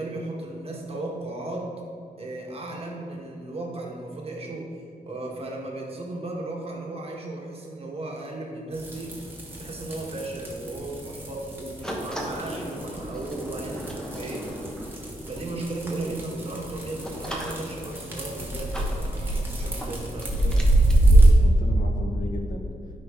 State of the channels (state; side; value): normal; both; correlation 0.83